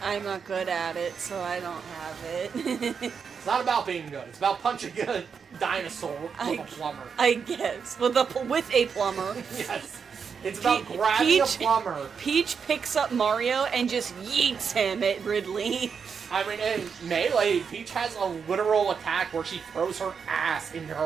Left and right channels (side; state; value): left; quieter; 6.3 dB